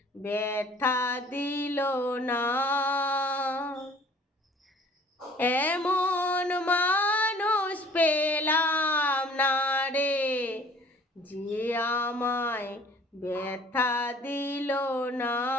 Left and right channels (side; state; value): both; normal; correlation 0.52